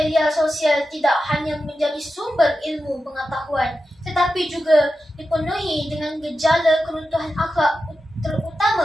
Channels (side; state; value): both; normal; correlation 0.91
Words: sosial tidak hanya menjadi sumber ilmu pengetahuan, tetapi juga dipenuhi dengan gejala keruntuhan akhlak,